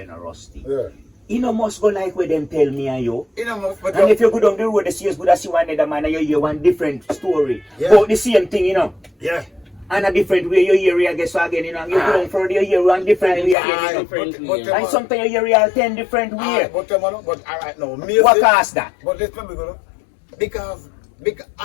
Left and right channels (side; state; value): right; drops out; at 13.6 s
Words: a rusty, Yeah. you know must go like where them tell me and you. You know, but And if you go down the road, you see us good as see one other man and you hear one different story. Yeah. But the same thing, you know. yeah. And a different way you hear it, I guess so again, you know. You go down further, you hear one different way again, you know. And sometimes you hear it 10 different ways. But alright, no, me What say- caused that? But let's remember, you know, because